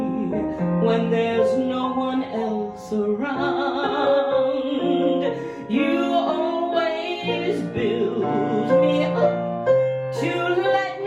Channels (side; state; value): both; identical; correlation 1.00